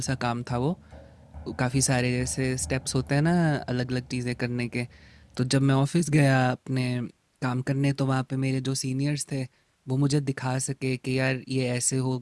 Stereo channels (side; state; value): both; identical; correlation 1.00